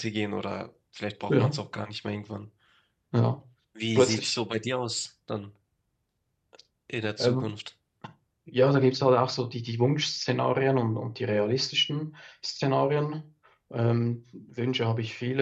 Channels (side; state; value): both; identical; correlation 1.00